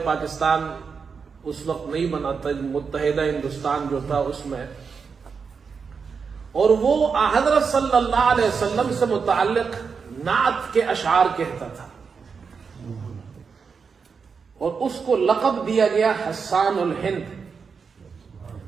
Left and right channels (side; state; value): left; quieter; 5.6 dB